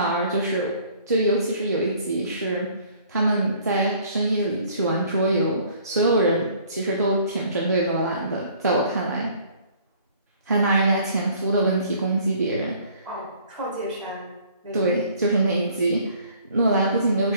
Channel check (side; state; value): both; inverted; correlation -0.56